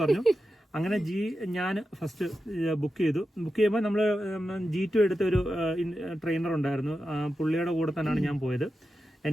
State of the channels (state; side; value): normal; both; correlation 0.90